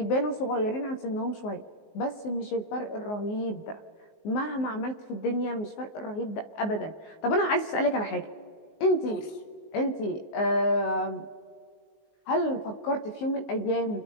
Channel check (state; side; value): late; right; 19 ms